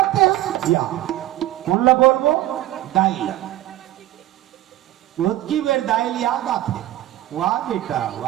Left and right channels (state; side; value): quieter; left; 14.8 dB